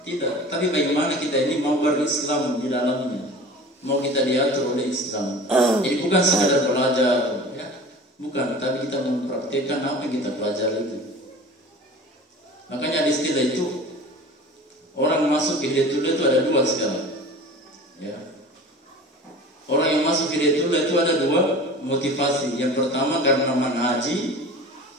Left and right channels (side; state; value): both; normal; correlation 0.39